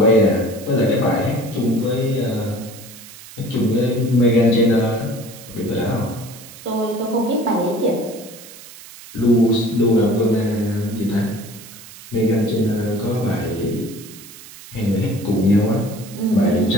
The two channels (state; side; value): noise; right; hiss, 18 dB below the sound